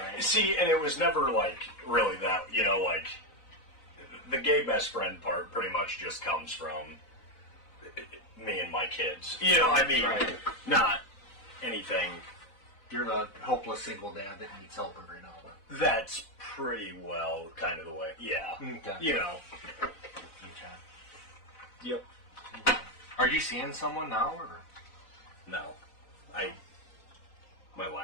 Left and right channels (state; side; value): late; right; 4.0 ms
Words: See, and it was never like really that, like the gay best friend part pretty much just comes from me and my kids. I mean, Right. not anything. You're the hopeless single dad that needs help every now and then. That's pretty well kind of the way. Yeah. Okay. Okay. Yep. Are you seeing someone now, or? No. My